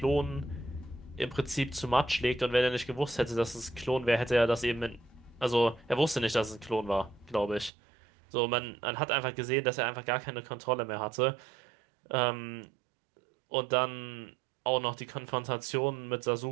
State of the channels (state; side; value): drops out; left; at 7.7 s